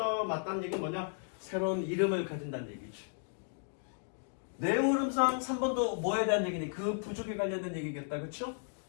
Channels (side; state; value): right; silent; digital silence